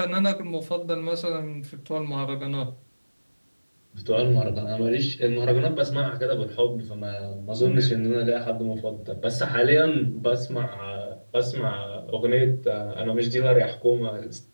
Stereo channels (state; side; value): inverted; both; correlation -1.00